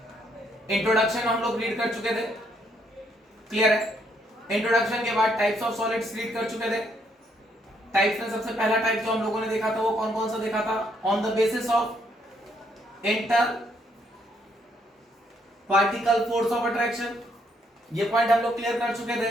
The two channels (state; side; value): normal; both; correlation 0.72